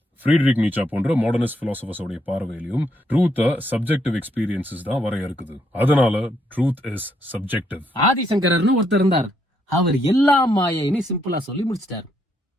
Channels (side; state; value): both; normal; correlation 0.75